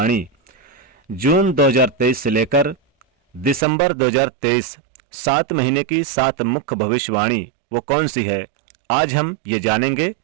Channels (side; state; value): left; drops out; at 3.7 s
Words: जून 2023 से लेकर दिसंबर 2023 7 महीने की 7 मुख्य भविष्यवाणी वो कौन सी है, आज हम ये जानेंगे।